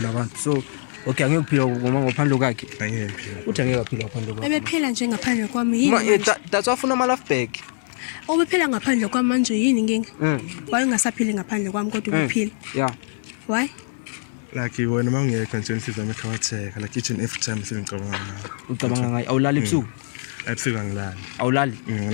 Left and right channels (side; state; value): right; silent; digital silence